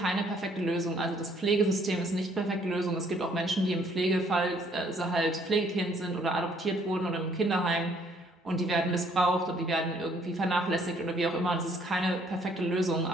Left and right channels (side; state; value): both; normal; correlation 0.64